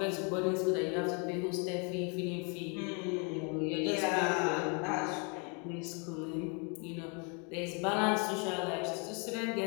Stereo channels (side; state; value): right; quieter; 35.2 dB